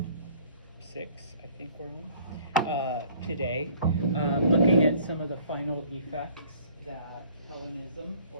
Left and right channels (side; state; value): both; inverted; correlation -0.56